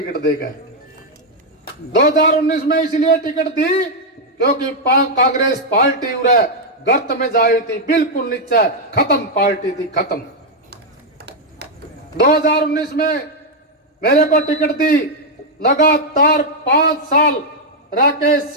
देगा। 2019 में इसलिए टिकट दी क्योंकि कांग्रेस पार्टी उरे गर्त में जाई थी, बिल्कुल नीचे खत्म पार्टी थी, खत्म। 2019 में मेरे को टिकट दी, लगातार 5 साल रह के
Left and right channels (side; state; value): both; normal; correlation -0.01